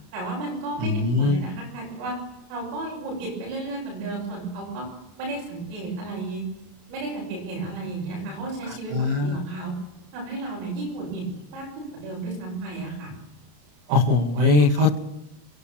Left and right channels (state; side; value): late; left; 33 ms